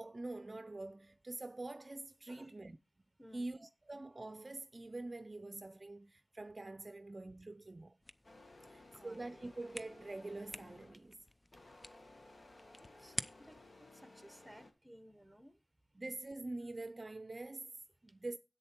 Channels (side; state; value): both; normal; correlation 0.98